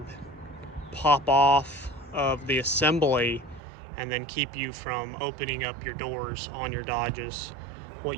pop off of the assembly and then keep you from opening up your doors on your Dodges.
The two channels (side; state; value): left; drops out; at 3.6 s